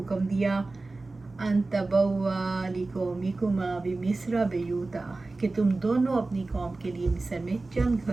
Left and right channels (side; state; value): left; quieter; 3.3 dB